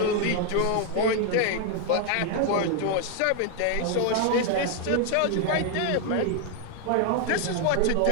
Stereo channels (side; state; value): both; different; correlation 0.01